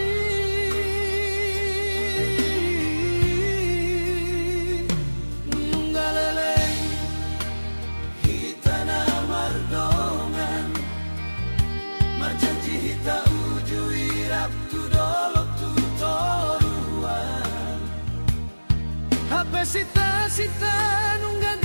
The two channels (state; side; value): inverted; both; correlation -1.00